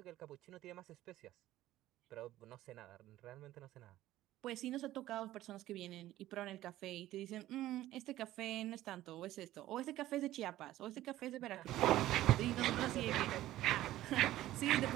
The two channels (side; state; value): left; quieter; 14.8 dB